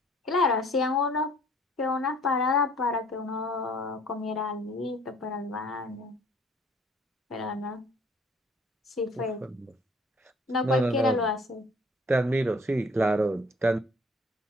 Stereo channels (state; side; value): normal; both; correlation 0.56